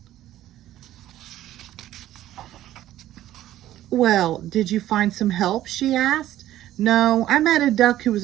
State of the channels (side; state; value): left; quieter; 13.5 dB